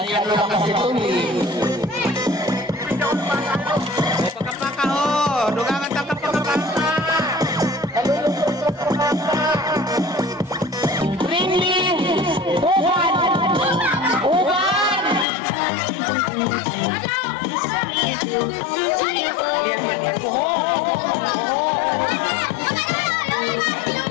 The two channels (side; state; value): right; drops out; at 15.2 s